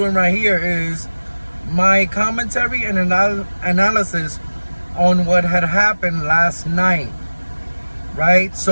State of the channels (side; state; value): both; inverted; correlation -1.00